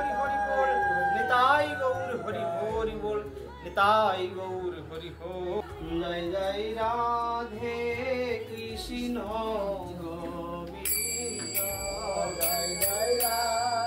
হরি বল, নিতাই গৌর হরি হরি বল, নিতাই গৌর হরি হরি। জয় জয় রাধে কৃষ্ণ।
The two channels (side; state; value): both; identical; correlation 1.00